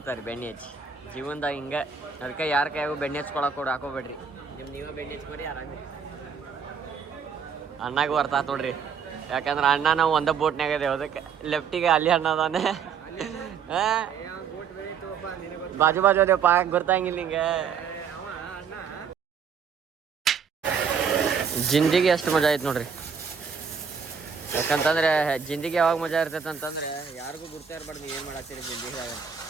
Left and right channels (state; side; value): quieter; left; 6.6 dB